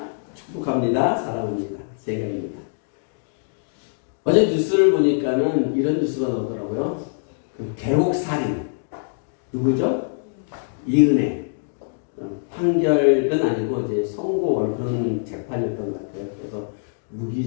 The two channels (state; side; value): silent; right; digital silence